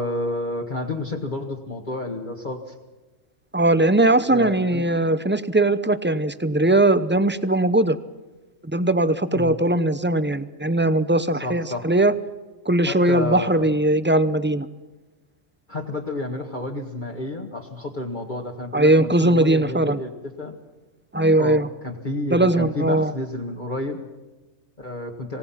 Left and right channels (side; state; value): both; normal; correlation 0.25